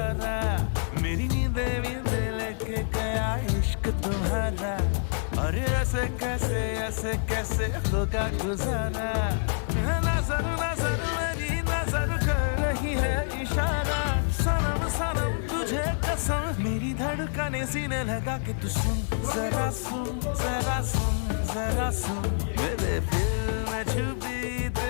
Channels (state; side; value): silent; right; 56 dB below the other